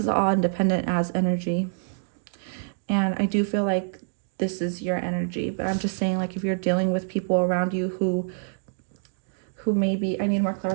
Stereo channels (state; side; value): silent; left; digital silence